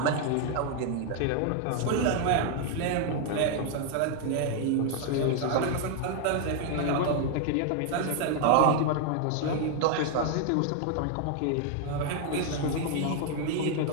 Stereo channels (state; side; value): different; both; correlation 0.00